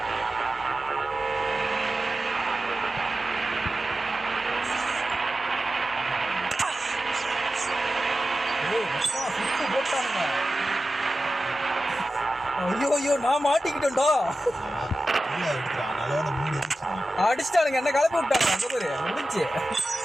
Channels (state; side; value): normal; both; correlation 0.94